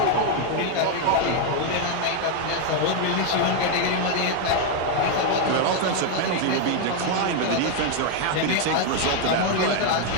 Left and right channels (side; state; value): both; different; correlation 0.01